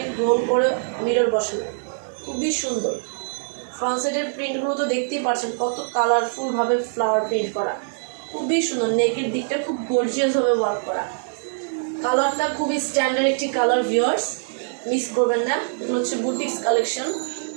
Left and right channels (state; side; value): silent; left; 63 dB below the other